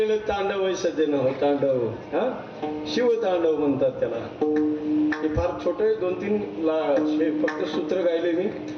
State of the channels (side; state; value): both; identical; correlation 1.00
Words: तांडव आहे सज्जन हो, तांडव. हा शिवतांडव म्हणतात त्याला. हे फार छोटे 2-3 फक्त सूत्र गायले मी.